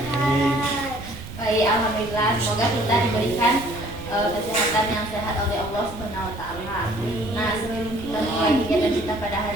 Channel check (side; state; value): right; noise; rumble, 13 dB below the sound